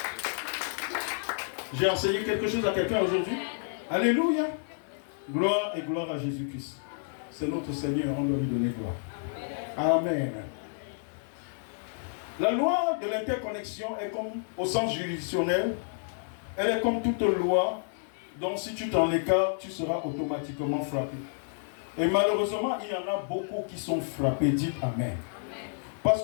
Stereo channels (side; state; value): right; silent; 58 dB below the other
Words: J'ai enseigné quelque chose à quelqu'un aujourd'hui. Alléluia. Gloire et gloire à Jésus-Christ. C'est notre Seigneur, on doit lui donner gloire. Amen. La loi de l'interconnexion est comme, au sens juridictionnel, elle est comme toute loi dont si tu t'en écartes, tu seras automatiquement frappé. Et malheureusement, il y en a beaucoup qui sont frappés. Dites Amen. Parce